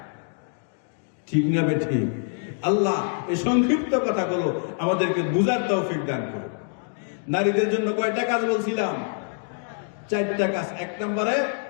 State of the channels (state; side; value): silent; right; 57 dB below the other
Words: ঠিক না বেঠিক? আল্লাহ এই সংক্ষিপ্ত কথাগুলো আমাদেরকে বুঝার তৌফিক দান করুন। নারীদের জন্য কয়টা কাজ বলছিলাম? চারটা কাজ। 1 নম্বরে